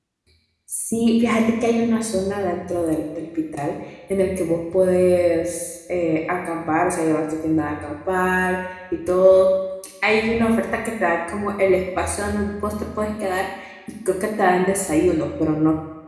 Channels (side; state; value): both; identical; correlation 1.00